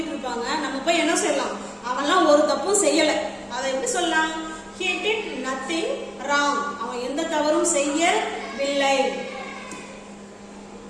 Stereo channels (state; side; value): identical; both; correlation 1.00